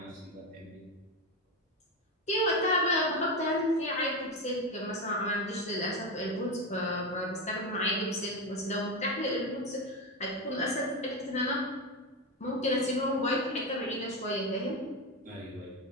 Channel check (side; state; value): both; normal; correlation 0.15